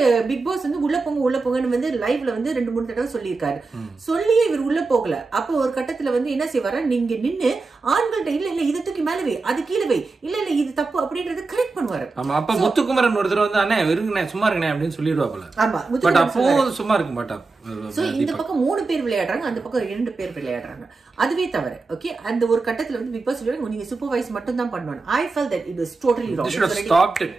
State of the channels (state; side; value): quieter; left; 3.9 dB